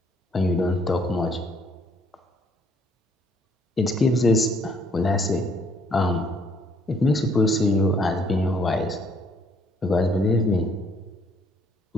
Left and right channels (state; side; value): normal; both; correlation 0.65